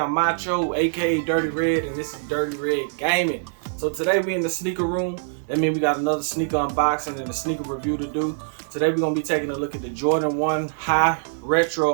Macho, aka Dirty Red, and this is Dirty Red Gaming. So today we in the sneaker room. That means we got another sneaker unboxing and a sneaker review to do. Today we're gonna be taking a look at the Jordan 1 High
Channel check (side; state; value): left; silent; digital silence